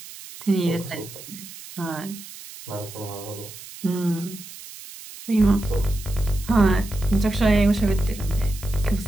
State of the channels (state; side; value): noise; right; hiss, 15 dB below the sound